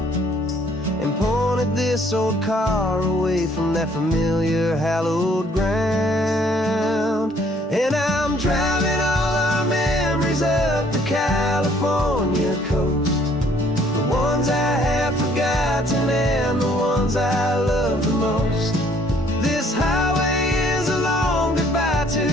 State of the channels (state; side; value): normal; both; correlation 0.62